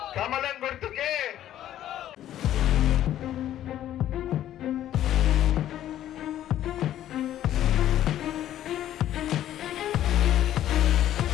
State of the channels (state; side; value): quieter; right; 12.1 dB